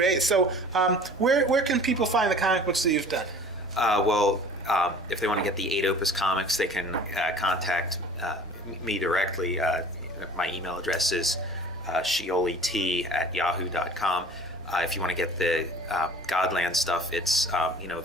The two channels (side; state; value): right; noise; hum, 23 dB below the sound